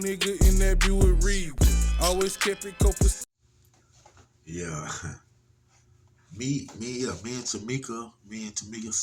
in that Buick Reed. Always kept it copacetic. Yeah. Me and Tamika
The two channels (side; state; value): both; identical; correlation 1.00